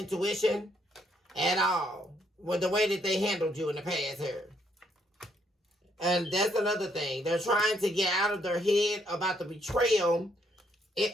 at all with the way that they handled you in the past here. And that's another thing. They're trying to get out of their head about the betrayal.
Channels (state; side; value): normal; both; correlation 0.72